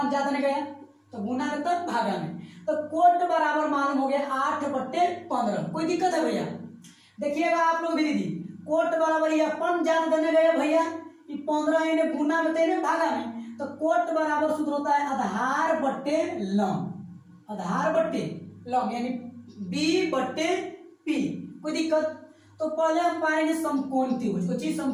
ज्यादा नहीं गया, तो गुना में तब भागा में, तो कोट बराबर मालूम हो गया 8 बट्टे 15, कोई दिक्कत है भैया। देखिएगा आप लोग भी दीदी कोट बराबर ये अपन ज्यादा देने गए भैया, 15 इन्हें गुना में तेने भागा में, तो कोट बराबर सूत्र होता है आधार बट्टे लंब, आधार बट्टे लंब यानी B बट्टे P, कोई दिक्कत। तो पहले हम पाएंगे समकोण त्रिभुज, कुछ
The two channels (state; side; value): identical; both; correlation 1.00